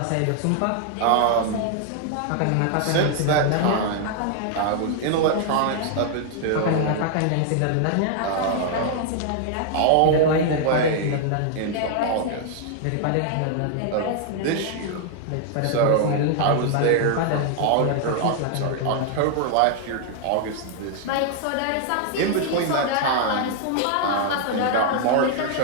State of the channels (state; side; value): different; both; correlation 0.00